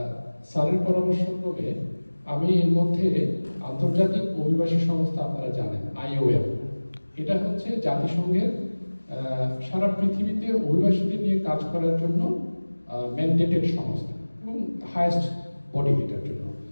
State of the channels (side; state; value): both; inverted; correlation -1.00